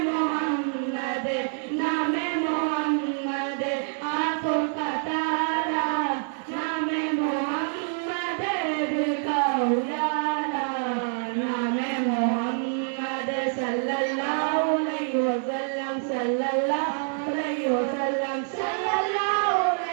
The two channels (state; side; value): silent; left; 61 dB below the other